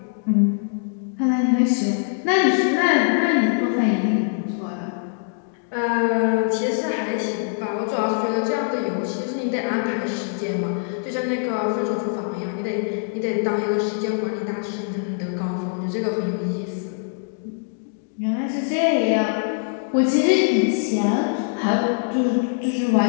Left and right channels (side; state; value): right; silent; 64 dB below the other